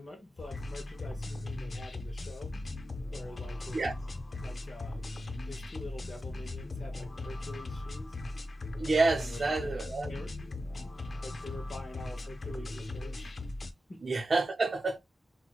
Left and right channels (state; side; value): normal; both; correlation 0.91